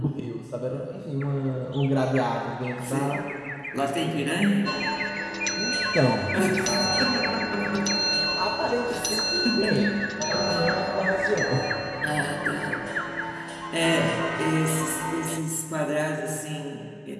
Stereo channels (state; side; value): identical; both; correlation 1.00